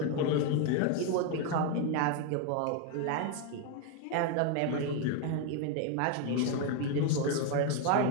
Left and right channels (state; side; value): different; both; correlation 0.01